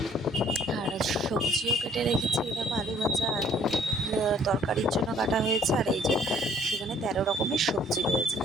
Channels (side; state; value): both; normal; correlation 0.59